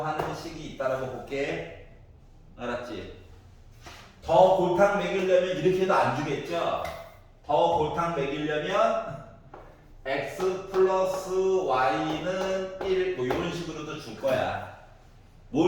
하는 식이 있다라고 볼게. 알았지? 더 골탕 먹이려면 이렇게 해도 안 주겠죠? 더 골탕 먹이려면 x 플러스 y는 1 뭐 이런 식으로도 줄 거야.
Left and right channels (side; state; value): both; identical; correlation 1.00